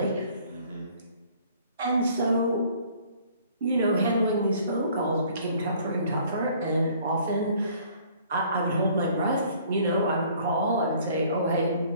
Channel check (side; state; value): both; inverted; correlation -0.57